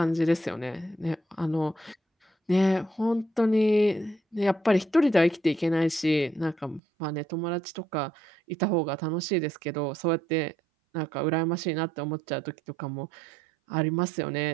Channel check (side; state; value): left; drops out; at 6.8 s